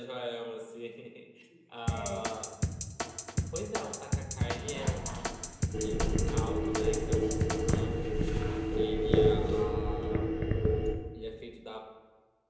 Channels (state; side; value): identical; both; correlation 1.00